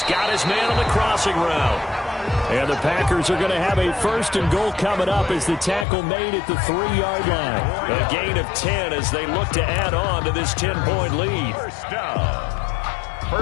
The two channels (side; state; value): right; drops out; at 5.9 s